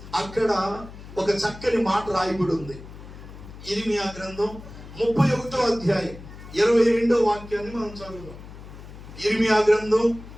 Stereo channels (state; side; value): noise; left; hum, 15 dB below the sound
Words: అక్కడ ఒక చక్కని మాట రాయబడి ఉంది. ఇర్మియా గ్రంథం 31వ అధ్యాయం 22వ వాక్యాన్ని మనం చదువుదాం. ఇర్మియా గ్రంథం